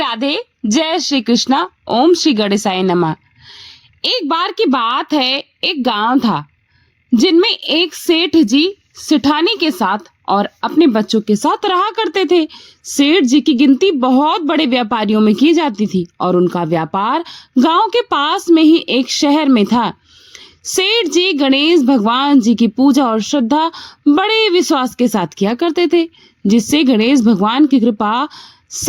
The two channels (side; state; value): both; identical; correlation 1.00